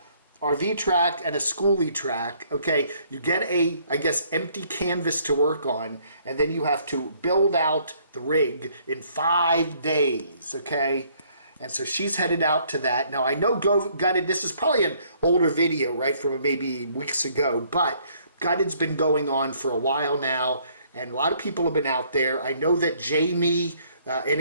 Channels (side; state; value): both; inverted; correlation -0.64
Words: RV track, and a schoolie track. Okay, you get a, I guess, empty canvas to work on, and then you have to build out the rig in 5 days, okay? And so she's headed out to that. Now, I know Gutted, this is probably an older video, right, from maybe weeks ago, but Gutted's been going on for a while now, and a lot of people have been out there. I know that Jamie,